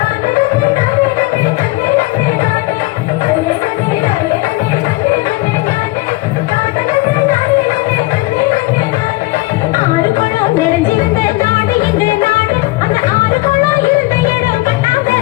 ஆறு குளம் நிறைஞ்சிருந்த நாடு எங்கள் நாடு அந்த ஆறு குளம் இருந்த இடம்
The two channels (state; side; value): quieter; right; 21.5 dB